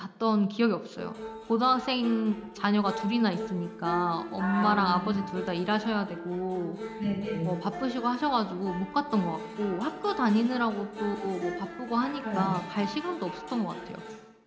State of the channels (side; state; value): both; identical; correlation 1.00